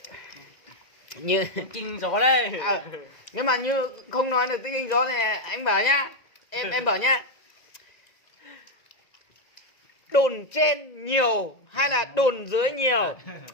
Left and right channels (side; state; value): right; late; 2.0 ms